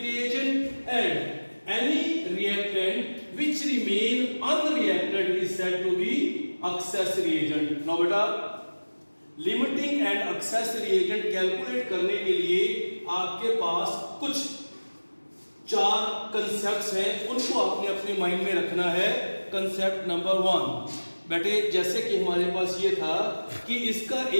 and any reactant which remain unreacted is said to be excess reagent. Now beta limiting and excess reagent calculate करने के लिए आपके पास कुछ 4 concepts हैं, उनको आपने अपने mind में रखना है। कंसेप्ट नंबर 1 बेटे, जैसे कि हमारे पास ये था कि इसका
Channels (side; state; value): both; inverted; correlation -1.00